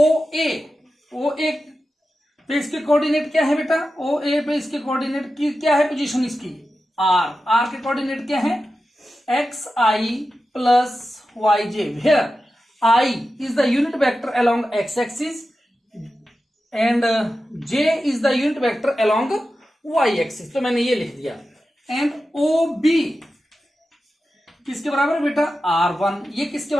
ए पे इसके कोऑर्डिनेट क्या है बेटा, ओ ए पे इसके कोऑर्डिनेट की क्या है, पोजीशन इसकी आर के कोऑर्डिनेट क्या है, x i plus y j, where i is the unit vector along x axis and j is the unit vector along y axis. तो मैंने ये लिख दिया। एंड ओ बी किसके बराबर है बेटा, R1, ये किसके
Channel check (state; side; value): normal; both; correlation 0.92